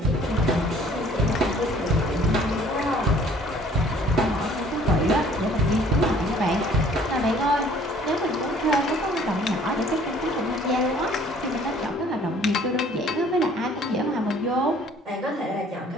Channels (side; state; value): both; normal; correlation 0.55